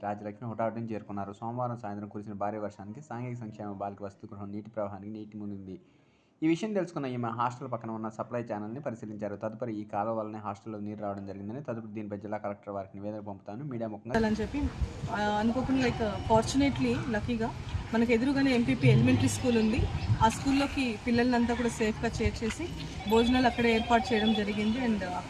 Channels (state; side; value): identical; both; correlation 1.00